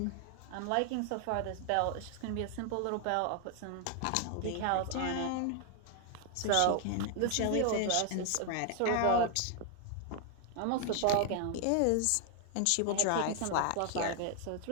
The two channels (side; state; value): both; different; correlation 0.00